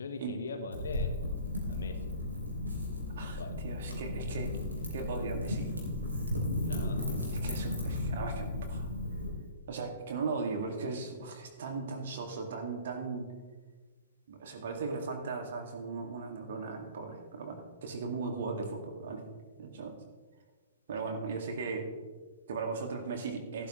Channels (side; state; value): both; inverted; correlation -0.47